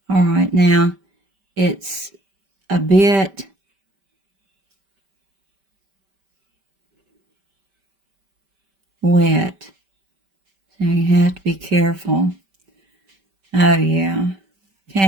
All right, now it's a bit wet, so you have to be careful. Oh, yeah.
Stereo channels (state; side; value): late; left; 5.1 ms